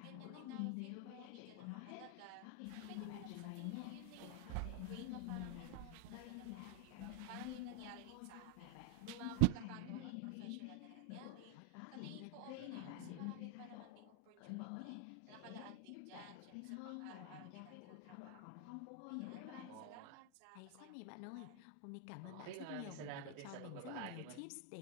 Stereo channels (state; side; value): different; both; correlation 0.00